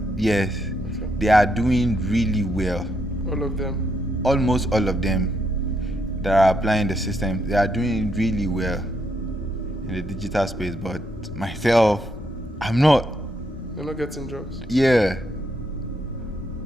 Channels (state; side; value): normal; both; correlation 0.77